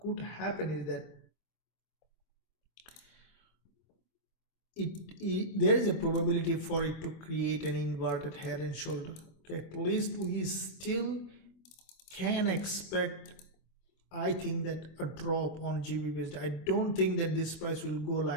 happen is that there is a probability for it to create an inverted head and shoulder. Okay, at least we still can expect, I think, that a drop on Gbpusd. I don't think that this price will go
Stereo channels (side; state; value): right; late; 25 ms